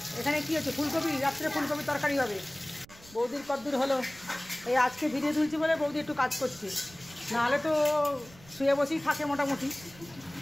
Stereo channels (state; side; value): noise; right; rumble, 22 dB below the sound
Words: এখানে কি হচ্ছে, ফুলকপি, রাত্রে ফুলকপি তরকারি হবে। বৌদির কদ্দূর হলো, এই আজকে ভিডিও তুলছি বলে বৌদি একটু কাজ করছে, নাহলে তো শুয়ে বসেই থাকে মোটামুটি।